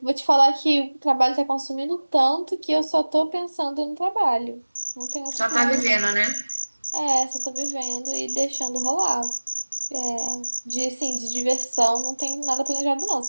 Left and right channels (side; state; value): both; inverted; correlation -1.00